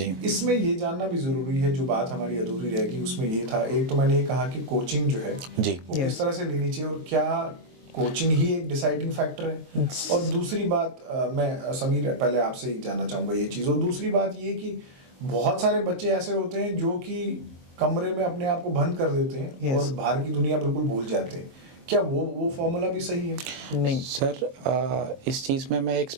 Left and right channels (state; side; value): late; left; 23 ms